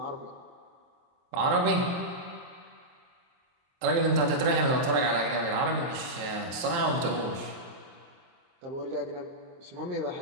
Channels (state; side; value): late; left; 23 ms